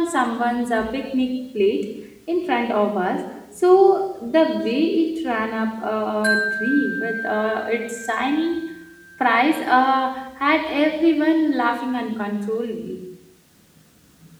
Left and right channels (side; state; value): both; identical; correlation 1.00